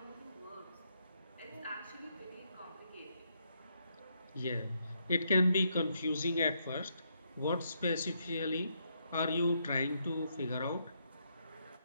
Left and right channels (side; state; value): both; inverted; correlation -0.76